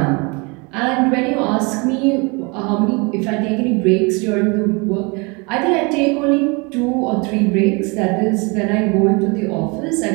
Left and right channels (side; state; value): left; quieter; 29.3 dB